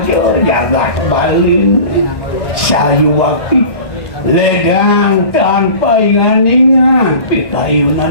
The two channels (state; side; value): late; right; 1.7 ms